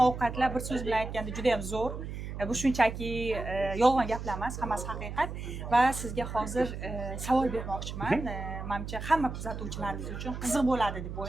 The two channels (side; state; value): right; noise; hum, 7 dB below the sound